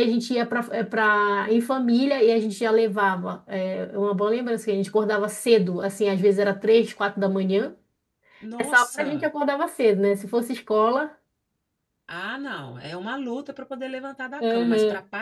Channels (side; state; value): both; identical; correlation 1.00